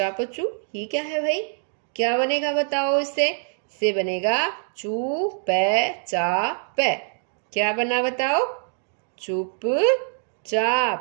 ये क्या है भाई, क्या बनेगा बताओ, इससे बनेगा चू पै चा पै, क्या बना बताओ,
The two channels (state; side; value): silent; left; digital silence